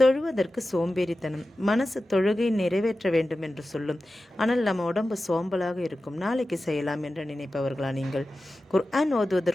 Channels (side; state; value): both; normal; correlation 0.94